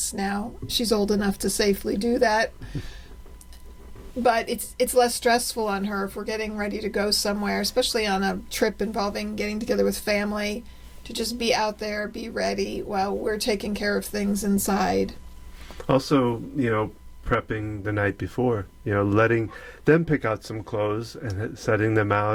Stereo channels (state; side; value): identical; both; correlation 1.00